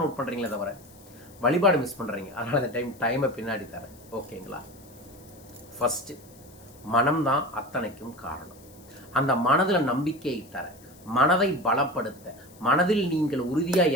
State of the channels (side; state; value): left; noise; hiss, 25 dB below the sound